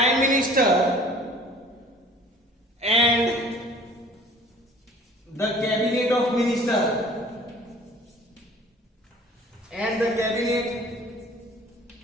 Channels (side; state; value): both; normal; correlation 0.49